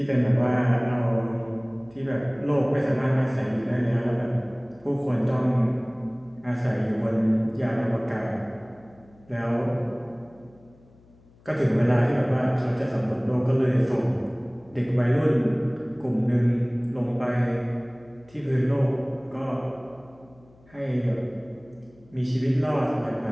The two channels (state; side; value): noise; left; hum, 28 dB below the sound